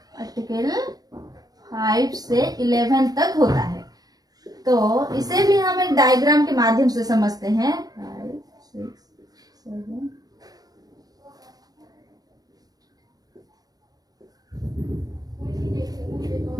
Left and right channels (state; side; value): late; left; 0.19 ms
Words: आर्टिकल 5 से 11 तक होता है। तो इसे भी हम एक डायग्राम के माध्यम से समझते हैं। 5, 6, 7